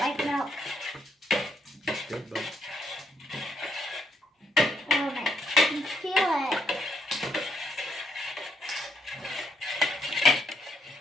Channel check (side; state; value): both; normal; correlation 0.75